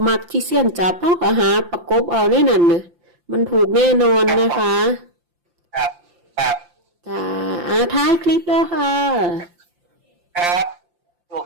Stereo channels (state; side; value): late; left; 5.8 ms